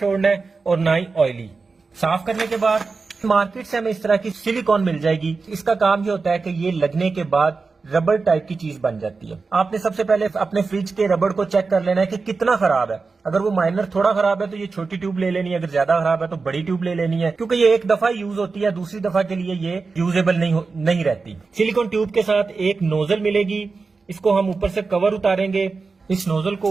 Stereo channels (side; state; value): left; quieter; 4.3 dB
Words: है और ना ही ऑयली। साफ करने के बाद मार्केट से हमें इस तरह की सिलिकॉन मिल जाएगी। इसका काम ये होता है कि ये लगने के बाद रबड़ टाइप की चीज बन जाती है। आपने सबसे पहले अपने फ्रिज के रबड़ को चेक कर लेना है कि कितना खराब है। अगर वो माइनर थोड़ा खराब है तो ये छोटी ट्यूब ले लेनी है, अगर ज्यादा खराब है तो बड़ी ट्यूब ले लेनी है, क्योंकि ये एक दफा यूज होती है, दूसरी दफा के लिए ये यूजेबल नहीं रहती। सिलिकॉन ट्यूब के साथ एक नोजल मिलेगी, इसको हम ऊपर से कवर उतारेंगे, इस नोजल